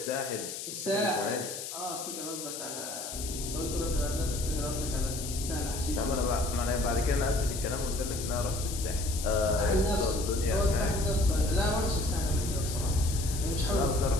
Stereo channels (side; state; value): left; noise; hiss, 7 dB below the sound